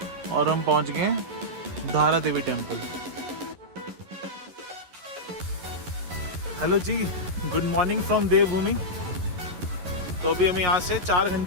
और हम पहुंच गए Dhara Devi temple. Hello ji, good morning from Devbhoomi. तो अभी हमें यहाँ से 4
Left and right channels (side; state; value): left; late; 11 ms